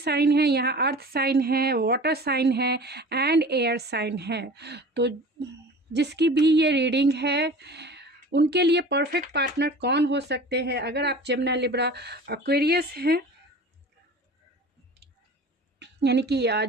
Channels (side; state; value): both; normal; correlation 0.40